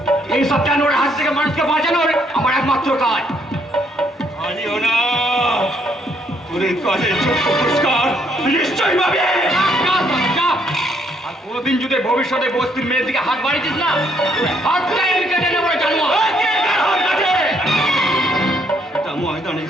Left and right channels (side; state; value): both; normal; correlation 0.69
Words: এই সব জানোয়ারের হাত থেকে মানুষকে বাঁচানোর আমার একমাত্র কাজ। আইও না, তোর এই কাজের যোগ্য পুরস্কার নিশ্চয়ই পাবে। যা, যা। আর কোনোদিন যদি ভবিষ্যতে বস্তির মেয়ের দিকে হাত বাড়িয়েছিস না, হাতটাই আমি কেটে নেবো জানোয়ার। এটা ময়দানে